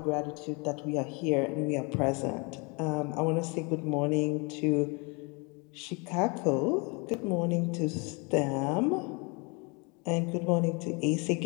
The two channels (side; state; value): right; quieter; 30.9 dB